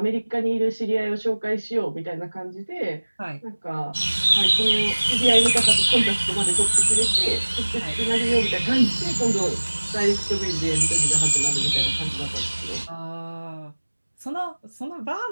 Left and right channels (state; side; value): inverted; both; correlation -1.00